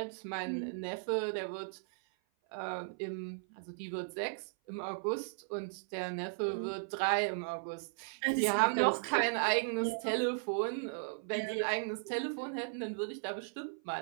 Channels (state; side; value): silent; left; 54 dB below the other